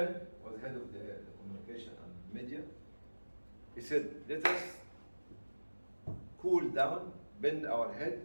was head of the communication and media. He said, let us cool down, bend our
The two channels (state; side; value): inverted; both; correlation -1.00